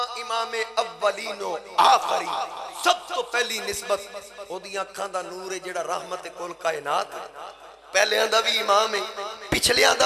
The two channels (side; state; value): both; identical; correlation 1.00